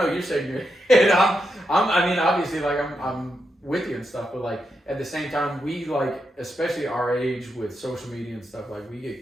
you're shaking your head. Obviously like I'm with you and stuff, but like at the same time we like, especially our age with social media and stuff, like we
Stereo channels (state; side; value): normal; both; correlation 0.85